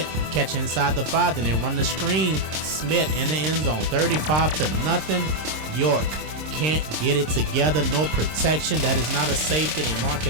catch inside the 5, then they run the screen. Smith in the end zone, 35-0. York can't get it together, no protection. That is not a safety. They mark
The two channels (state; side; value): late; left; 26 ms